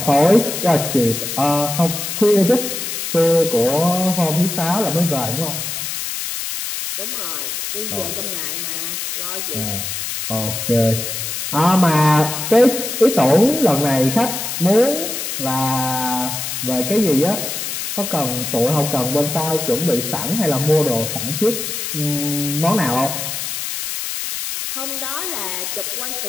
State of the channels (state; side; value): noise; left; hiss, 4 dB below the sound